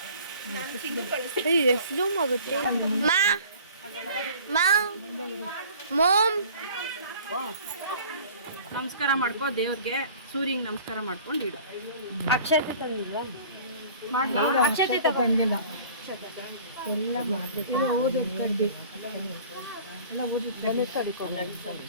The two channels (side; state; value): both; inverted; correlation -0.47